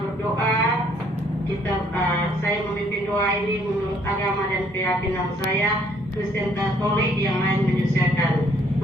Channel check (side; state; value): both; normal; correlation 0.64